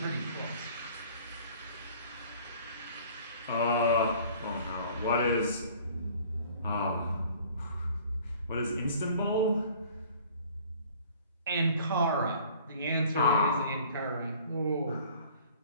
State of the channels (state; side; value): inverted; both; correlation -0.51